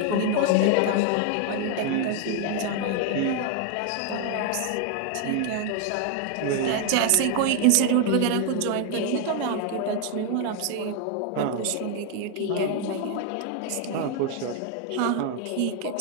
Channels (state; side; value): different; both; correlation 0.00